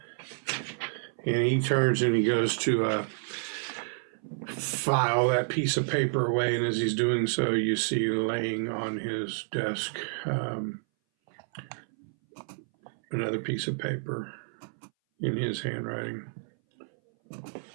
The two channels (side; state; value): left; silent; 58 dB below the other